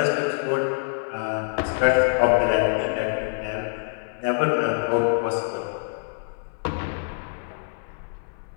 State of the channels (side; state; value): right; silent; 62 dB below the other